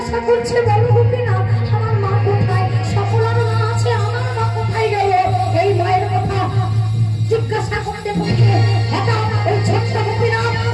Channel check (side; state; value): both; identical; correlation 1.00